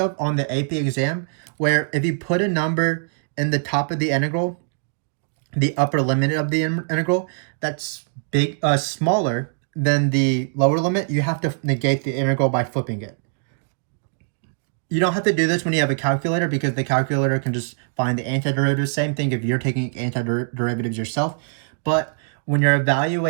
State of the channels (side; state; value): left; silent; digital silence